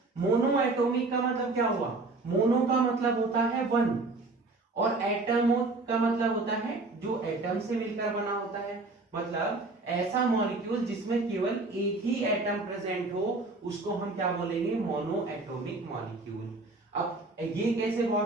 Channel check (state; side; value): quieter; left; 3.3 dB